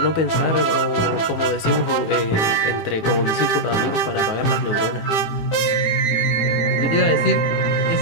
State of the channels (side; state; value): right; late; 18 ms